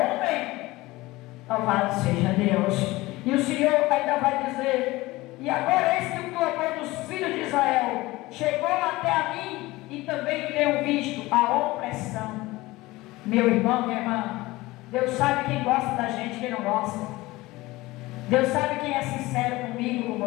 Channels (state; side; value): quieter; right; 19.7 dB